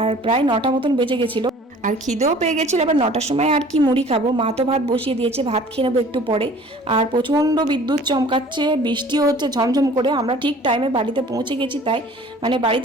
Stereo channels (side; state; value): both; normal; correlation 0.49